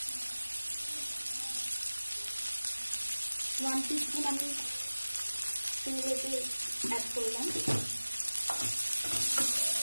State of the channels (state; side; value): inverted; both; correlation -1.00